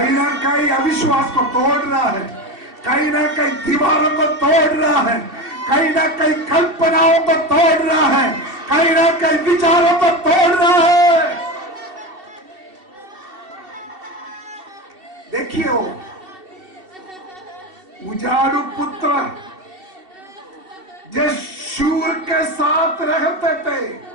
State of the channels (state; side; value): late; left; 2.7 ms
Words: ना कहीं अविश्वास को तोड़ रहा है, कहीं ना कहीं दीवारों को तोड़ रहा है, कहीं ना कहीं कल्पनाओं को तोड़ रहा है, कहीं ना कहीं विचारों को तोड़ रहा है। देखिए वो उजाड़ू पुत्र जो शूर के साथ रहते थे,